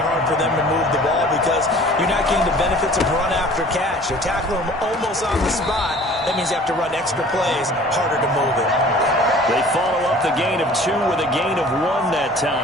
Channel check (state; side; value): normal; both; correlation 0.48